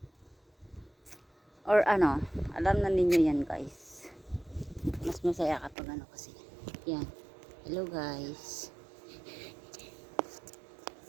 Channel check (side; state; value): left; drops out; at 5.8 s